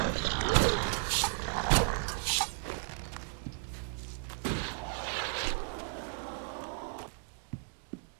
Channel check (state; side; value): silent; left; 55 dB below the other